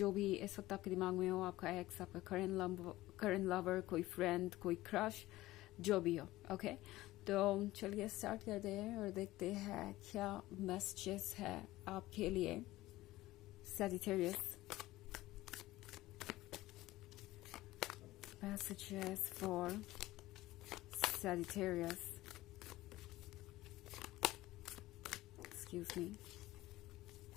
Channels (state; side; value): quieter; right; 17.2 dB